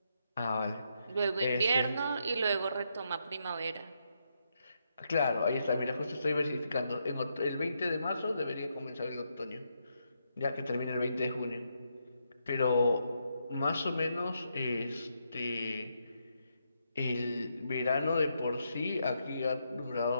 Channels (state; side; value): inverted; both; correlation -0.80